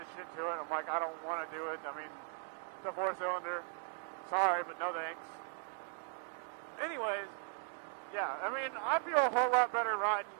shit to it. I'm like, I don't want to do it. I mean, it's a 4-cylinder. Sorry, but no thanks. But anyways, yeah, I mean, I feel a whole lot better riding,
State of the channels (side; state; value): left; silent; 52 dB below the other